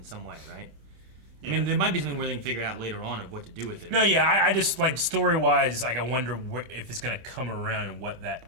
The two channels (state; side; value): late; left; 26 ms